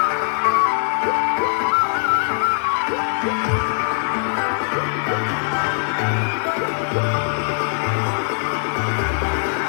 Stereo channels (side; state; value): right; silent; 57 dB below the other